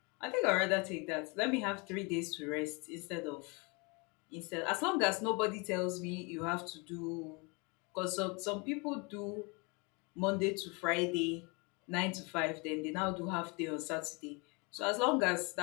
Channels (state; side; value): quieter; right; 30.1 dB